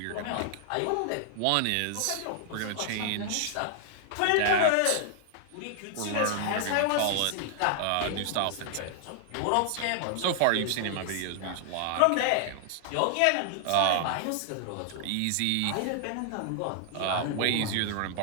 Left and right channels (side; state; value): both; different; correlation 0.00